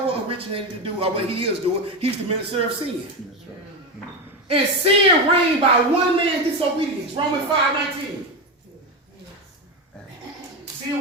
originated to do, or what he is doing. He's the minister of sin. And sin reigned by one man's disobedience. Romans 5:19. Sin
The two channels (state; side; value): normal; both; correlation 0.15